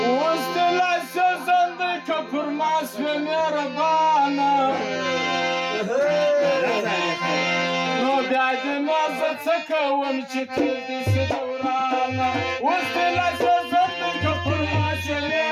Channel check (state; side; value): identical; both; correlation 1.00